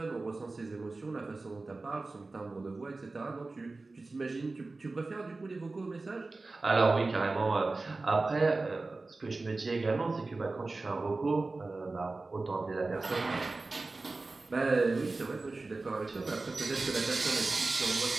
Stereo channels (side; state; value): left; quieter; 3.5 dB